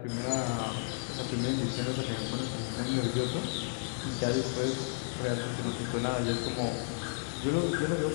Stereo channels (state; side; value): silent; right; 56 dB below the other